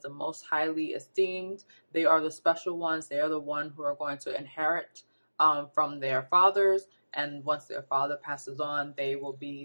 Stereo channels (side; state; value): both; inverted; correlation -1.00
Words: most highly esteemed. They are the special ones. They are the one who are going to inherit from their fathers. And once their father passes on, they will